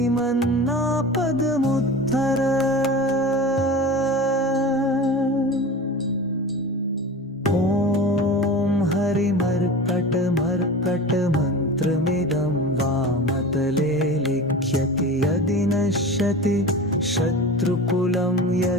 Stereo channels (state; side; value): normal; both; correlation 0.33